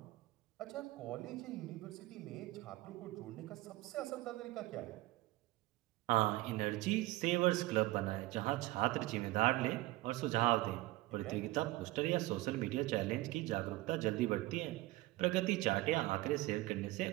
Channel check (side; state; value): left; quieter; 19.0 dB